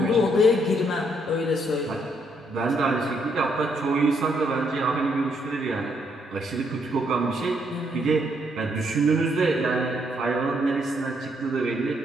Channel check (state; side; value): normal; both; correlation 0.73